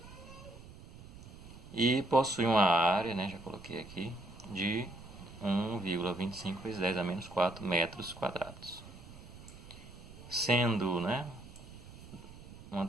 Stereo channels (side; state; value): right; noise; rumble, 17 dB below the sound